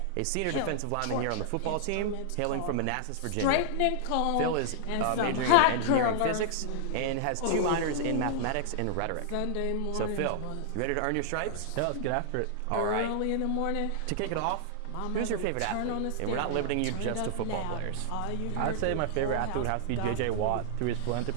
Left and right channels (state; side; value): different; both; correlation -0.01